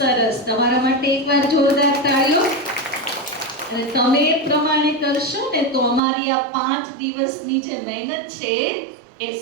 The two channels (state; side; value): drops out; left; at 6.0 s